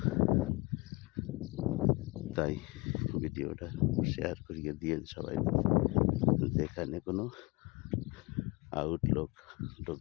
তাই ভিডিওটা শেয়ার করিয়ে দিয়ে সবাই, যেখানে কোনো আউটলুক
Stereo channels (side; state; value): right; quieter; 24.7 dB